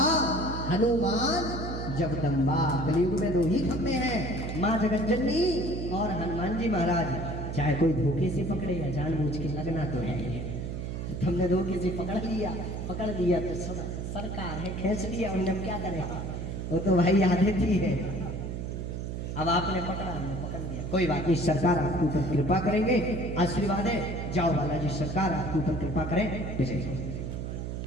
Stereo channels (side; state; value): right; noise; hum, 5 dB below the sound